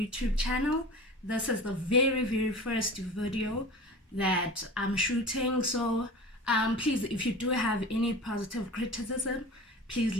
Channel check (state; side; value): normal; both; correlation 0.36